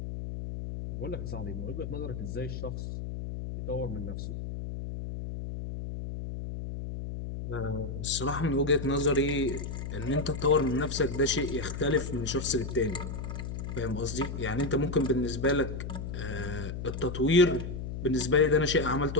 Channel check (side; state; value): left; noise; hum, 6 dB below the sound